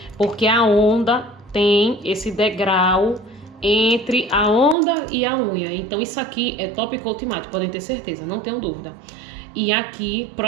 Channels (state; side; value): drops out; left; at 4.8 s